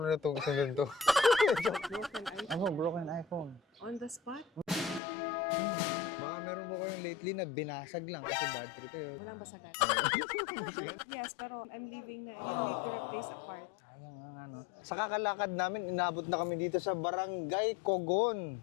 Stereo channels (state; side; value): drops out; right; at 5.0 s